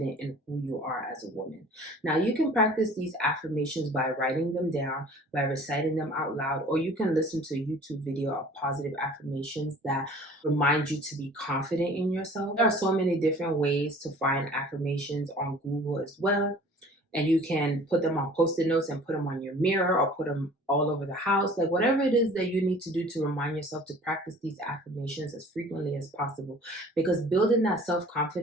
in who you are as a woman. Now, you can practice these affirmations by writing them down, by reciting them out loud, or you can listen to a YouTube video of positive affirmations that remind you to be confident in yourself. There are so many different ways to find affirmations on Google as well. And you can put them on post-it notes and put them on your mirror or put them all over the house. Like whatever it is that you need to do to remind yourself to practice these affirmations as frequently as possible. Because building that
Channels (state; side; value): normal; both; correlation 0.48